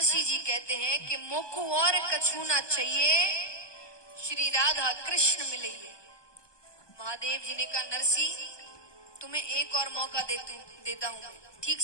जी कहते हैं कि मोकू और कछूना चाहिए, श्री राधा कृष्ण मिलेंगे। महादेव जी ने कहा नरसिंह तुम्हें एक और मौका देता हूं, ठीक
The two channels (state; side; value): late; right; 1.2 ms